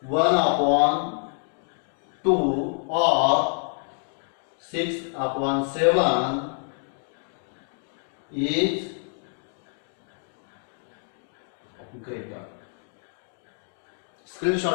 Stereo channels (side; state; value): right; silent; 56 dB below the other